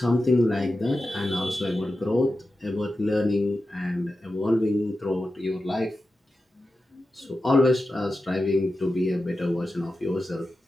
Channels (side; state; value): both; normal; correlation 0.92